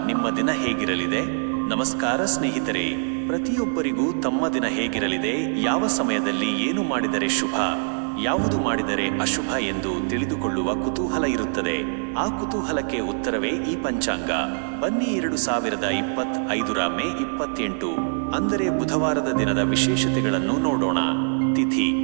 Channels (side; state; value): left; silent; digital silence